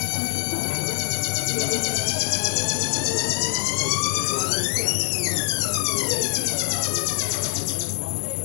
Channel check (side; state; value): right; silent; 57 dB below the other